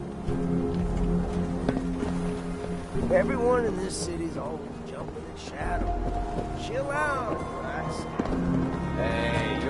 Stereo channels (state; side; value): identical; both; correlation 1.00